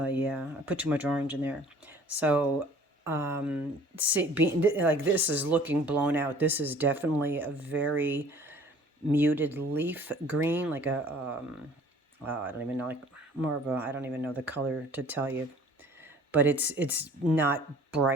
I put too much orange in there. So see, like this is looking blown out. This is definitely a very muted leaf green, like a, I don't even know, like more of a, I don't even know the color to tell you. But it's not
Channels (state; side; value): normal; both; correlation 0.51